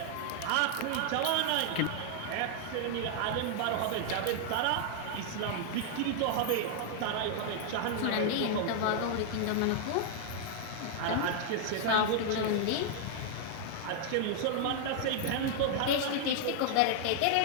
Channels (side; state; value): both; different; correlation 0.00